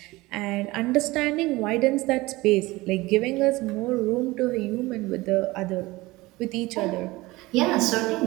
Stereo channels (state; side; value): quieter; left; 20.6 dB